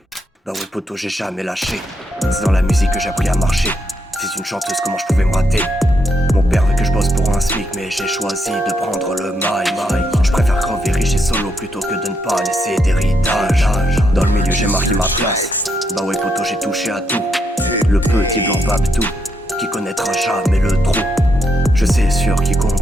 Bah ouais, poto, j'ai jamais lâché. C'est dans la musique que j'ai appris à marcher. Fils d'une chanteuse, comment je pouvais me rater? Mon père veut que je bosse pour un SMIC, mais j'ai choisi de prendre le mail. Je préfère crever riche et solo plutôt que de ne pas laisser d'héritage. Dans le milieu, j'ai marqué ma place. Bah ouais, poto, j'ai touché à tout. Le petit blanc Babtou qui connaîtra jamais le trou. Je sais sur qui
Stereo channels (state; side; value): normal; both; correlation 0.78